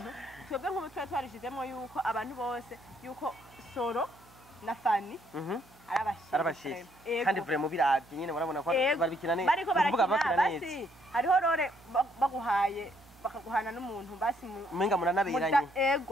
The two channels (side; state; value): right; noise; hum, 27 dB below the sound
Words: twebwe nk'ubu twarishizemo yuko abantu bose yuko Soro na Fani arabashije kandi vraiment biravye nyene barabona ko barabikina neza bariko barakina basi hariho rore baguhaye bakaguhana n'umuntu basi umenga muranabiranye